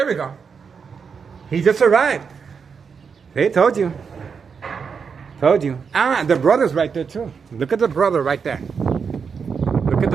we go. He just arrived. They told you. The brother's right there, too. Look at the brother right there.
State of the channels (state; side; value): quieter; left; 6.0 dB